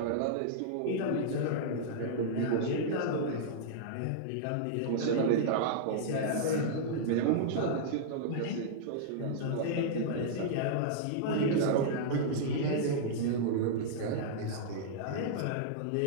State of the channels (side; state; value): both; different; correlation -0.02